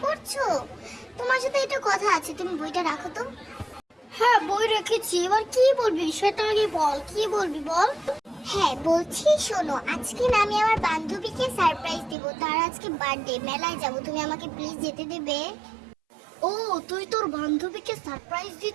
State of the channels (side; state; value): left; drops out; at 12.2 s